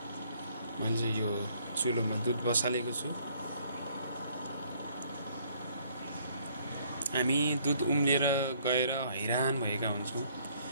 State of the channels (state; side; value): inverted; both; correlation -0.64